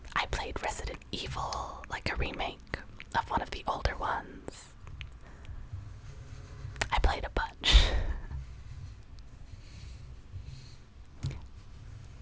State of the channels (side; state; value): both; identical; correlation 1.00